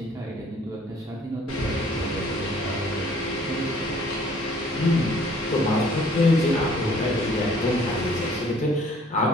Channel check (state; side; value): normal; both; correlation 0.57